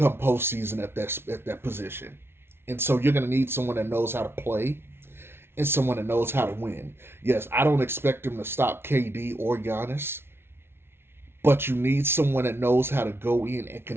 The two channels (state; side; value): late; left; 0.12 ms